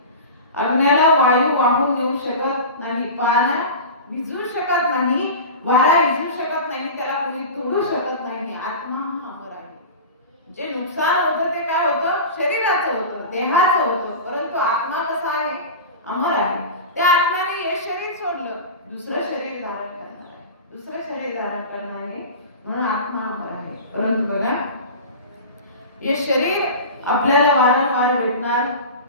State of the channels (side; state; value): both; inverted; correlation -0.31